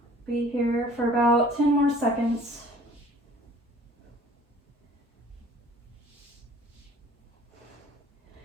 Be here for about 10 more seconds.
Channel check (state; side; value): normal; both; correlation 0.51